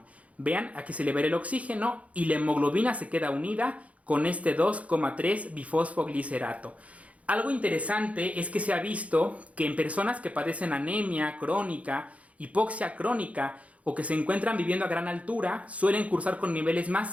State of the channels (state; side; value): late; left; 0.066 ms